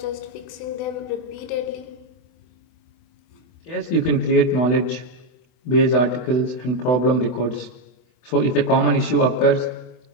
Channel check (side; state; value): right; late; 24 ms